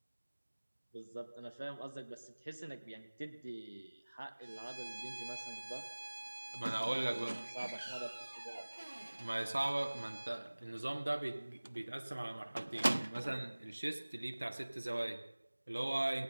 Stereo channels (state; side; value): inverted; both; correlation -1.00